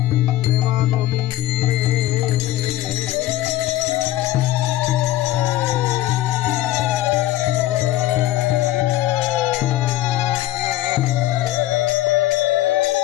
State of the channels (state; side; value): quieter; right; 14.9 dB